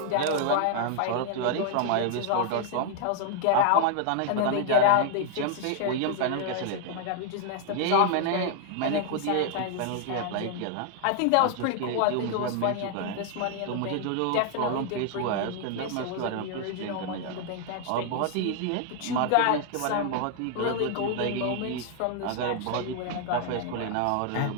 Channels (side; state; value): both; different; correlation 0.00